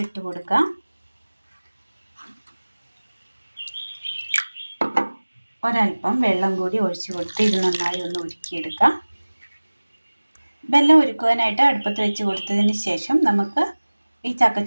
ഇട്ട് കൊടുക്കാം. ഒരൽപ്പം വെള്ളം കൂടി ഒഴിച്ചു കൊടുത്ത് ഇത് നന്നായി ഒന്ന് ഉരുക്കിയെടുക്കാം. വെള്ളം ഉരുക്കുവാനായിട്ട് അടുപ്പത്ത് വെച്ച് കൊടുത്തതിന് ശേഷം നമുക്ക് ഈ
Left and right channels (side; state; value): both; inverted; correlation -1.00